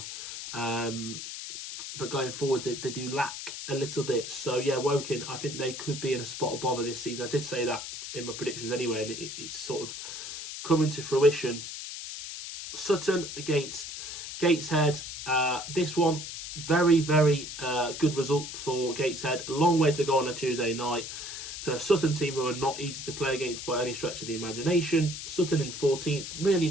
But going forward, they do lack a little bit. So, yeah, Woking, I think they could be in a spot of bother this season. I did say that in my predictions anyway, and it's sort of coming to fruition. Sutton against Gateshead. This one, very, very good result for Gateshead. A long way to go on a Tuesday night. So a Sutton team who are not easy to play against by any stretch of the imagination. Sutton in 14th, really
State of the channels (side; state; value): left; noise; hiss, 8 dB below the sound